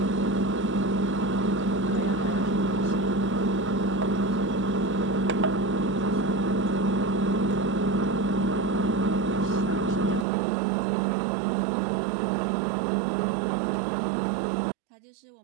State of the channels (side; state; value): left; drops out; at 10.2 s